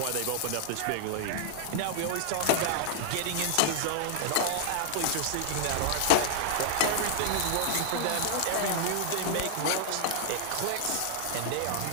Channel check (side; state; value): both; different; correlation 0.00